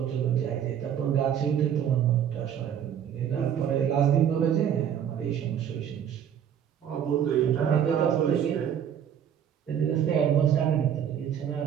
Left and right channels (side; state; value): left; quieter; 9.1 dB